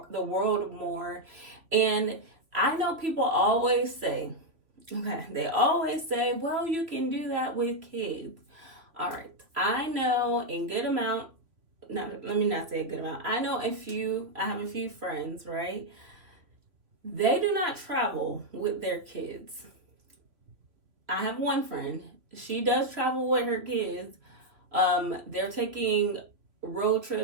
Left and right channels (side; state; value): left; late; 3.0 ms